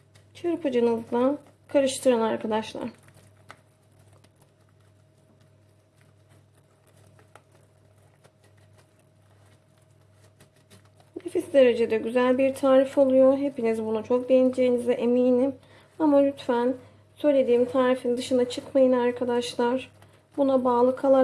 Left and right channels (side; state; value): both; identical; correlation 1.00